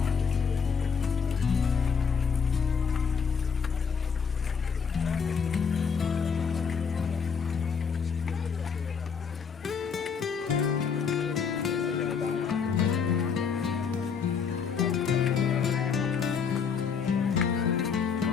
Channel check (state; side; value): quieter; right; 6.2 dB